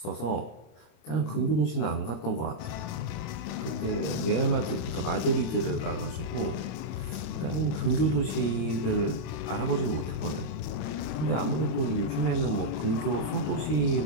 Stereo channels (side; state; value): right; late; 26 ms